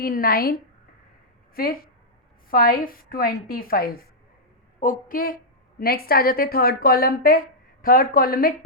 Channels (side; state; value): both; normal; correlation -0.08